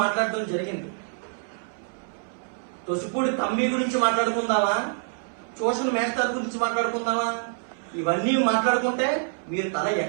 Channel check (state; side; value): silent; left; 61 dB below the other